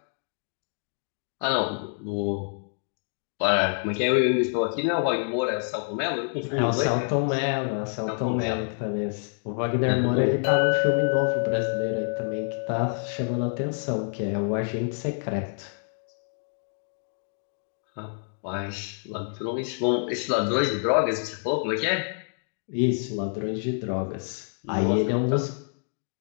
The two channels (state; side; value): silent; right; digital silence